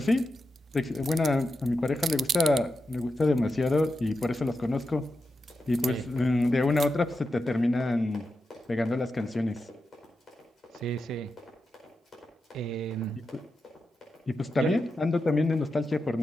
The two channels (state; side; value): normal; both; correlation 0.89